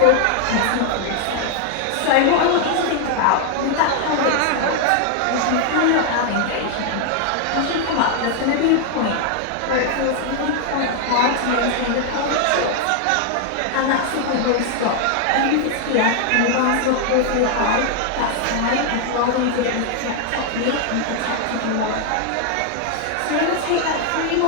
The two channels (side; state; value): both; different; correlation 0.00